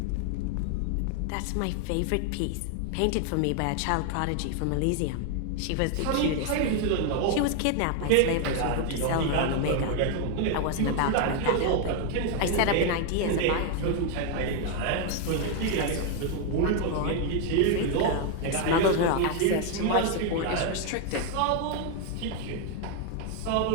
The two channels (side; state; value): both; different; correlation 0.00